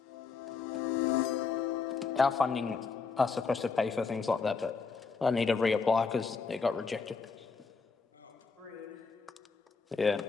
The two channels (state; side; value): quieter; right; 4.9 dB